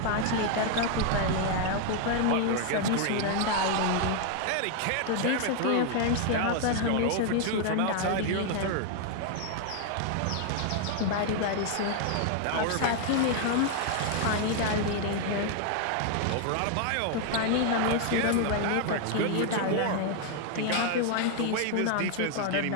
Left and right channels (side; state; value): both; different; correlation 0.00